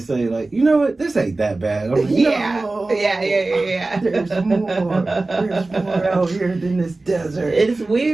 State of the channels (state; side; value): quieter; left; 3.2 dB